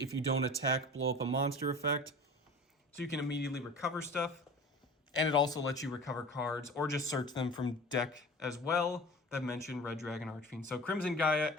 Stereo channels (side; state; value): both; normal; correlation 0.38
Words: you don't attack, blow up a monster effect. So you can immediately recover stuff. And it also lets you recover cards or just search them from deck as well that mention Red Dragon Archfiend. So Crimson Gaia,